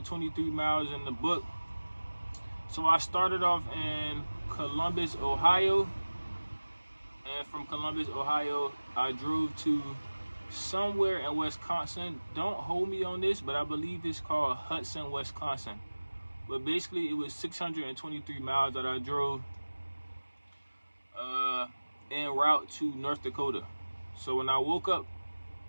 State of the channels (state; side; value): inverted; both; correlation -1.00